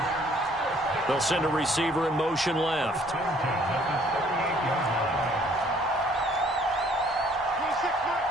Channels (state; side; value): normal; both; correlation 0.60